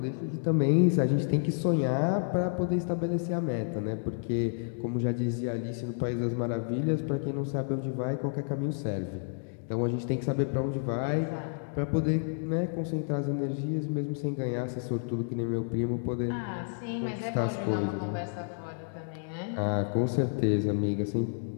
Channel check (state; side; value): silent; right; digital silence